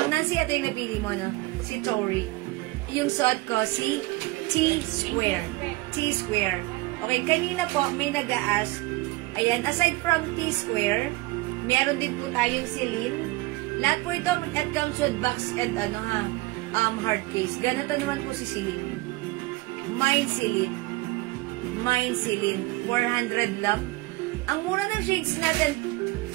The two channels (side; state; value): left; quieter; 21.6 dB